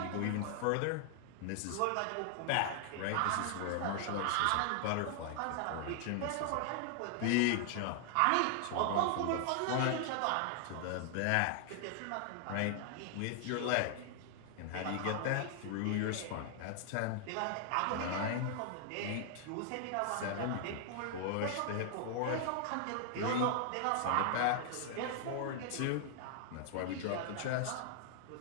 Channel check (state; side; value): different; both; correlation 0.00